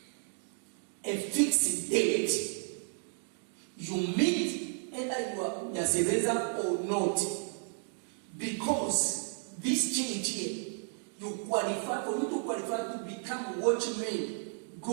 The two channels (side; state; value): left; silent; 56 dB below the other